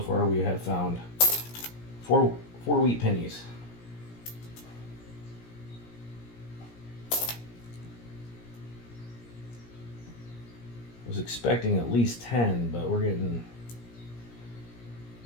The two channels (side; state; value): right; late; 17 ms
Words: we have found four wheat pennies. I was expecting at least 10, but we're getting,